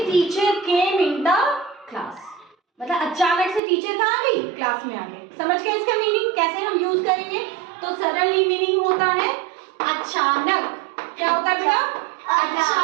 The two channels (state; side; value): drops out; left; at 3.6 s